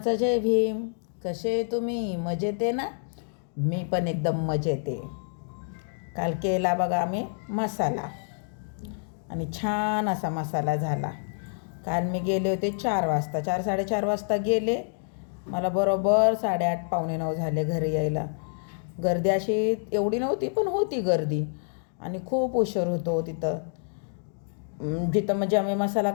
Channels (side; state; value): right; silent; digital silence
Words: जय भीम. कसे तुम्ही? मजेत आहे ना? मी पण एकदम मजेत आहे. काल केला बघा आम्ही मसाला आणि छान असा मसाला झाला. काल मी गेले होते 4 वाजता, 4-4:30 वाजता गेले. मला बरोबर 8:30 पावणे 9 झाले घरी यायला. गर्दी अशी एवढी नव्हती, पण होती गर्दी आणि खूप उशीर होतो तिथं. जिथं म्हणजे आम्ही मसाला